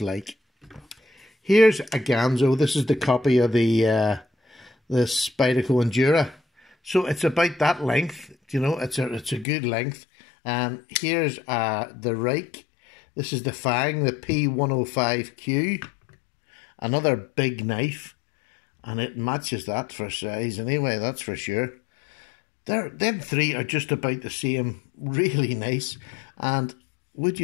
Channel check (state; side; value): drops out; right; at 9.5 s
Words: like. Here's a Ganzo. This is the copy of the Spyderco Endura. So it's about that length. You know, it's a good length. Here's the Reich. This is the Fang, the P105Q. Another big knife. And it matches that for size anyway, that's for sure. Them three are just about the same. Really nice. And would